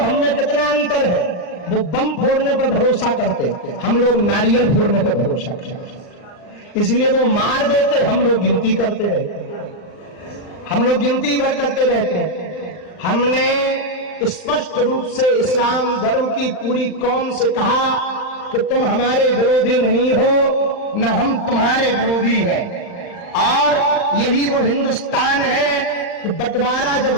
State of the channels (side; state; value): right; late; 39 ms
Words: कितना अंतर है। वो बम फोड़ने पर भरोसा करते, हम लोग नारियल फोड़ने पर भरोसा करते। इसलिए वो मार देते, हम लोग गिनती करते रहते, हम लोग गिनती भर करते रहते हैं। हमने स्पष्ट रूप से इस्लाम धर्म की पूरी कौम से कहा कि तुम हमारे विरोधी नहीं हो, न हम तुम्हारे विरोधी हैं। और यही वो हिंदुस्तान है कि बंटवारा जब